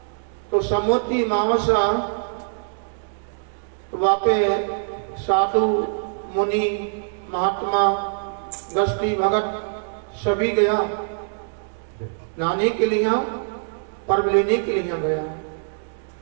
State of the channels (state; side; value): silent; left; digital silence